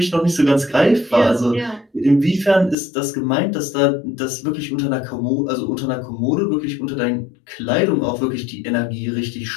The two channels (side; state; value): right; drops out; at 2.8 s